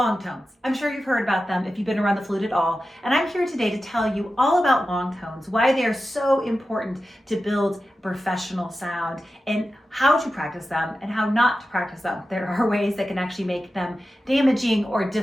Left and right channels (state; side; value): normal; both; correlation 0.93